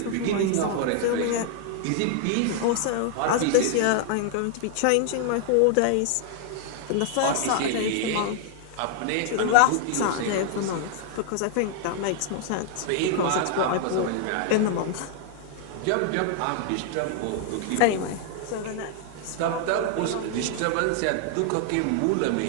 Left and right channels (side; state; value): both; different; correlation 0.00